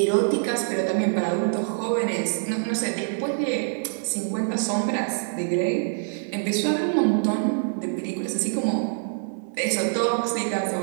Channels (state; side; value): silent; left; digital silence